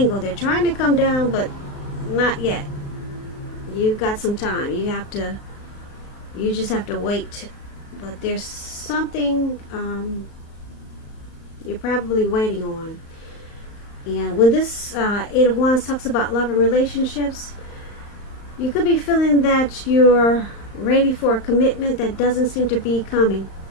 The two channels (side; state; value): right; late; 35 ms